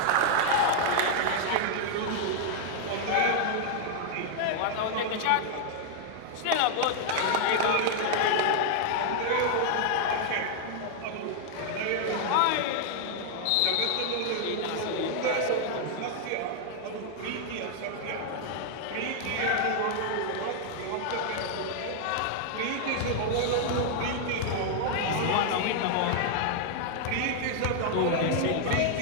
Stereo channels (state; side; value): different; both; correlation 0.00